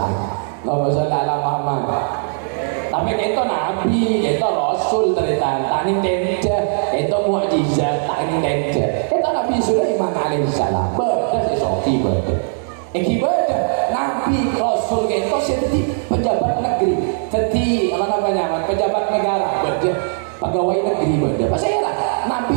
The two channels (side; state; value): left; silent; digital silence